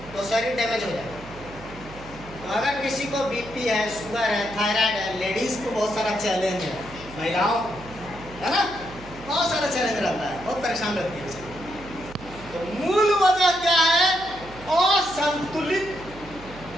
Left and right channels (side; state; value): right; noise; hum, 17 dB below the sound